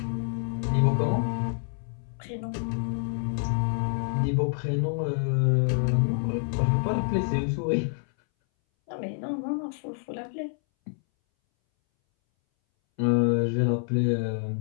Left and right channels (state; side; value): silent; right; 60 dB below the other